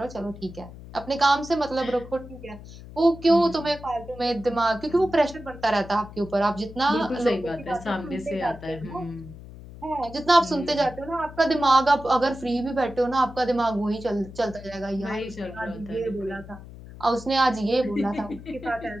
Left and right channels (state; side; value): noise; left; hum, 16 dB below the sound